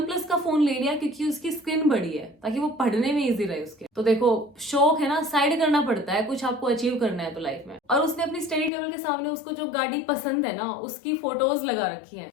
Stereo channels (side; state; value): right; drops out; at 8.7 s